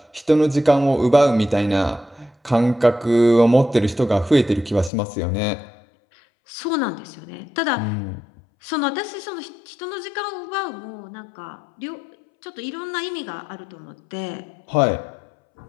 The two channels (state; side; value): drops out; right; at 4.9 s